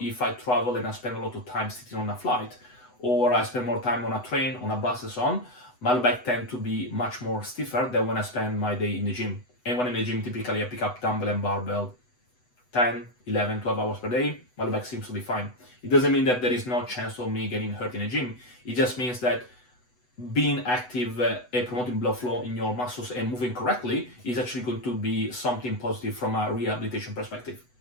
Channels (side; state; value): right; late; 8.0 ms